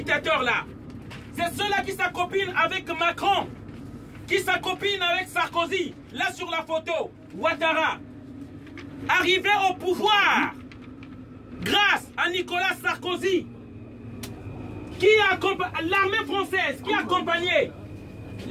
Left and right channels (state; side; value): identical; both; correlation 1.00